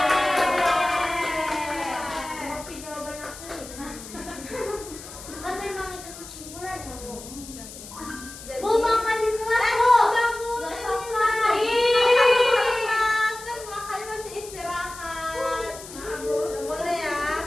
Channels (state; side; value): noise; left; hiss, 14 dB below the sound